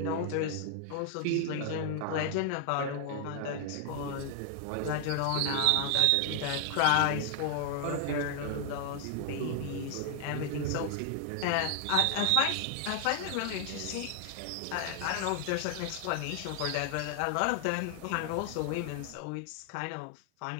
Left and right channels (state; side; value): different; both; correlation 0.00